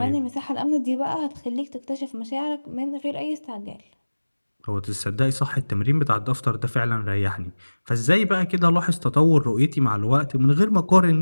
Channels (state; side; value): inverted; both; correlation -1.00